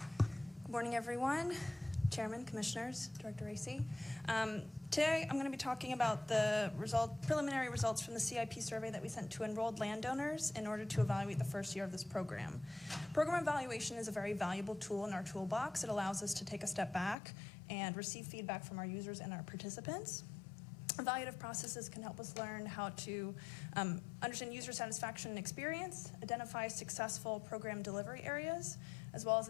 Good morning, everyone. Chairman, Commissioners, Director Racy. Today, I'm going to be talking about the preliminary results from the CIP survey that we sent to enrolled landowners in order to evaluate the first year of this program. Program evaluation is a very valuable tool in our toolbox. It allows us to take a step back and receive feedback from our users and our participants. Evaluative processes can help us learn how to understand user satisfaction and experience, identify successful program delivery areas, as well as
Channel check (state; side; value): drops out; right; at 17.2 s